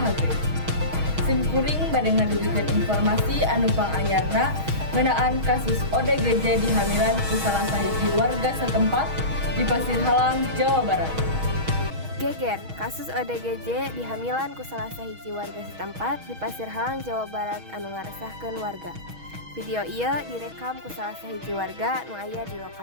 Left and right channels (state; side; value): late; left; 6.3 ms